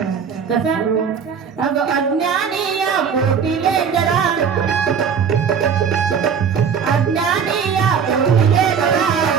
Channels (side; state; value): left; quieter; 6.8 dB